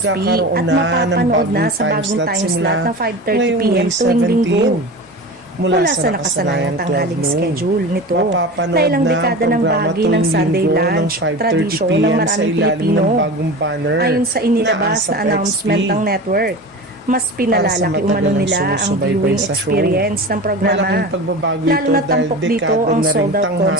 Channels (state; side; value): normal; both; correlation 0.31